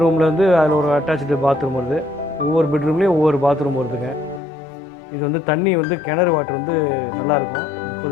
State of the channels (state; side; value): drops out; right; at 4.4 s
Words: ரூமில் வந்து அதில் ஒரு அட்டாச்சு பாத்ரூம் வருது. ஒவ்வொரு பெட்ரூம்லேயும் ஒவ்வொரு பாத்ரூம் வருதுங்க. இது வந்து தண்ணி வந்து கிணறு வாட்டர் வந்து நல்லாயிருக்கும்,